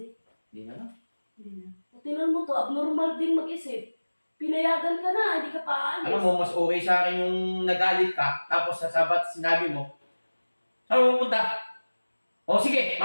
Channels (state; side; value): inverted; both; correlation -1.00